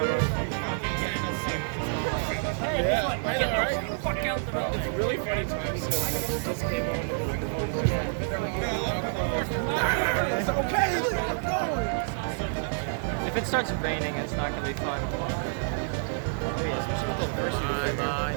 If it starts raining, it's not gonna be fun. Especially with all the first.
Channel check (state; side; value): silent; left; digital silence